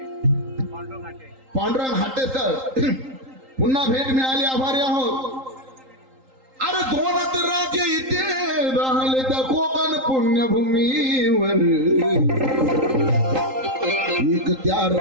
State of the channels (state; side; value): late; left; 3.8 ms